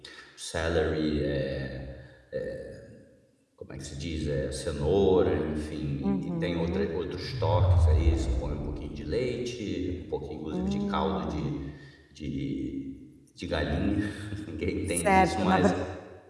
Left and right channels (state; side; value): identical; both; correlation 1.00